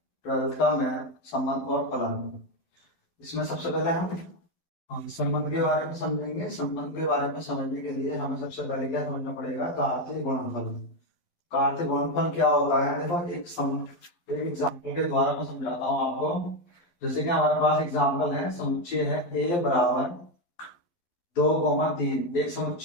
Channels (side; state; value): right; late; 12 ms